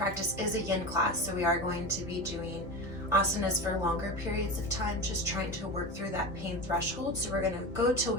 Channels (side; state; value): both; normal; correlation 0.26